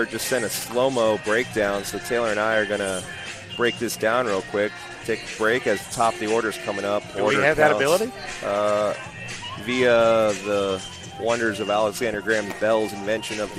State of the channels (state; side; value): identical; both; correlation 1.00